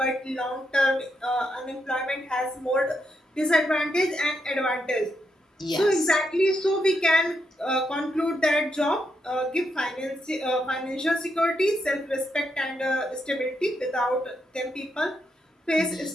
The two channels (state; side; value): normal; both; correlation 0.81